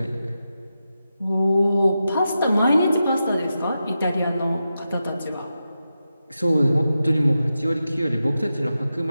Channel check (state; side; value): inverted; both; correlation -0.89